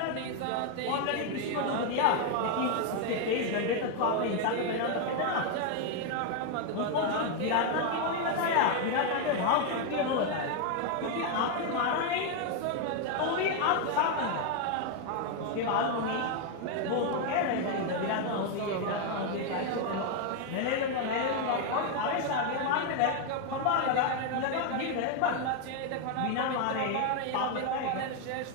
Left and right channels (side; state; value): both; different; correlation 0.01